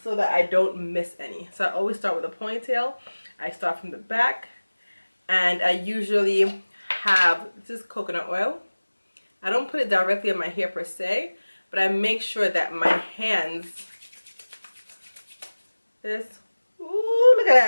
so that I don't miss any. So I always start with a ponytail. I start from the back, and I usually have, this is coconut oil. I don't put it directly on my hair per se, but I make sure that my hands, ooh, look at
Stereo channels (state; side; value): inverted; both; correlation -1.00